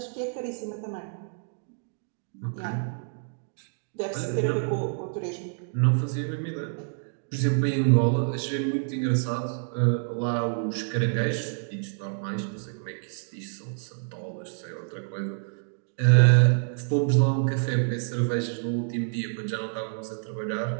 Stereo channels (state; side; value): silent; left; digital silence